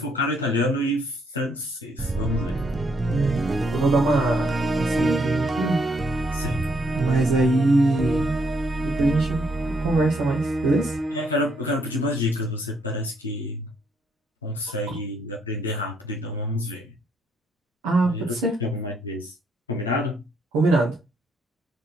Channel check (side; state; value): both; normal; correlation 0.73